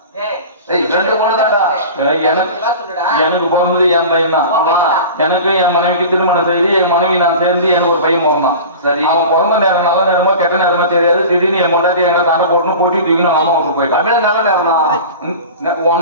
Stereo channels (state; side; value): inverted; both; correlation -0.36